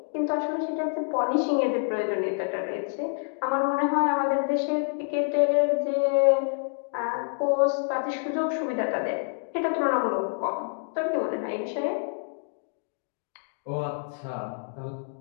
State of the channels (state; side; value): silent; right; digital silence